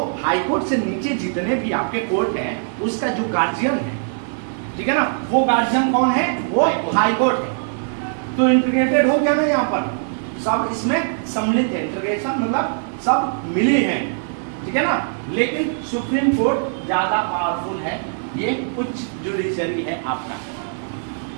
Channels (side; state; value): left; silent; 64 dB below the other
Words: हाई कोर्ट से नीचे जितने भी आपके कोर्ट हैं उसका जो गार्जियन है, ठीक है ना, वो गार्जियन कौन है, वो हाई कोर्ट है। तो इंटीग्रेटेड हो गया ना, यहाँ पर सब इसमें सम्मिलित है, इंटीग्रेशन मतलब सब मिली हैं, ठीक है ना। लेकिन सुप्रीम कोर्ट ज्यादा पावरफुल है, ये उच्च जुडिशरी है आपका,